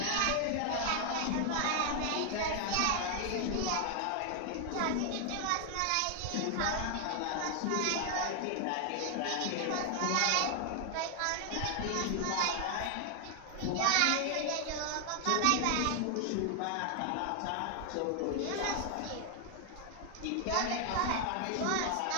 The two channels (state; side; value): different; both; correlation 0.00